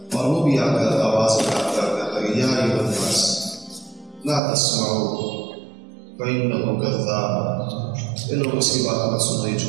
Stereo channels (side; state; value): left; drops out; at 4.4 s